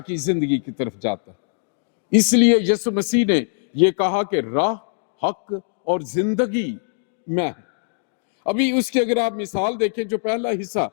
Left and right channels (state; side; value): silent; right; digital silence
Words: کی زندگی کی طرف جاتا ہے. اس لیے یسوع مسیح نے یہ کہا کہ راہ، حق اور زندگی میں ہے. ابھی اس کی اگر آپ مثال دیکھیں، جو پہلا حصہ